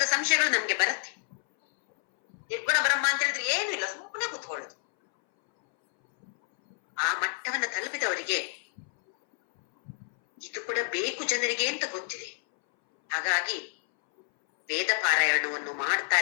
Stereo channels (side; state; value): right; silent; 59 dB below the other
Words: ಸಂಶಯಗಳು ನಮ್ಗೆ ಬರುತ್ತೆ. ನಿರ್ಗುಣ ಬ್ರಹ್ಮ ಅಂತ ಹೇಳಿದ್ರೆ ಏನು ಇಲ್ಲ, ಸುಮ್ಮನೆ ಕೂತ್ಕೊಳ್ಳೋದು. ಆ ಮಟ್ಟವನ್ನ ತಲುಪಿದವರಿಗೆ ಇದು ಕೂಡ ಬೇಕು ಜನರಿಗೆ ಅಂತ ಗೊತ್ತಿದೆ. ಹಾಗಾಗಿ ವೇದ ಪಾರಾಯಣವನ್ನು